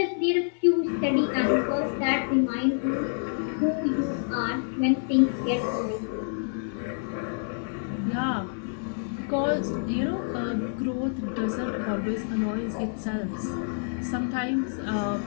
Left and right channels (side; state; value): right; silent; digital silence